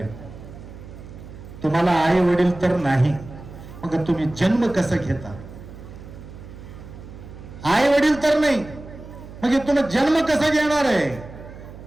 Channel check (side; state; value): right; noise; hum, 15 dB below the sound